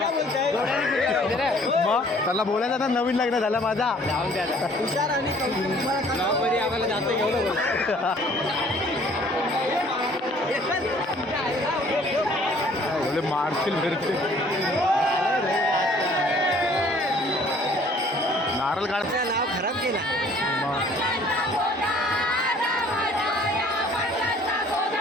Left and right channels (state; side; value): normal; both; correlation 0.56